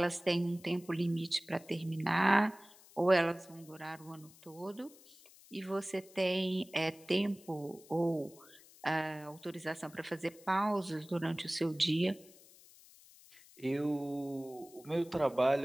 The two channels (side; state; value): left; noise; hiss, 23 dB below the sound